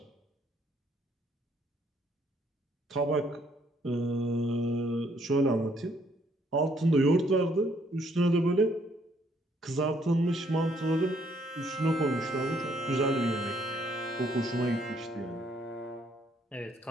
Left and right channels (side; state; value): both; normal; correlation 0.68